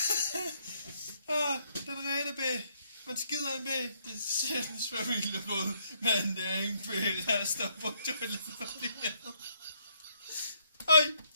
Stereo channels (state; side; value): inverted; both; correlation -0.72